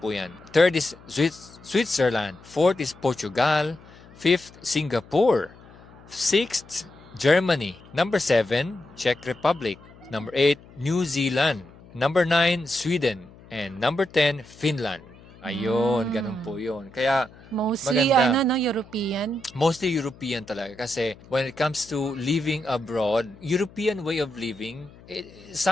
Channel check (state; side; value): noise; left; hum, 23 dB below the sound